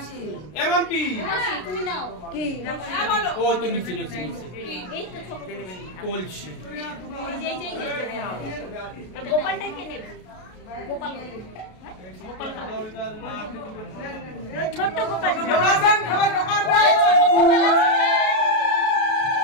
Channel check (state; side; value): late; right; 33 ms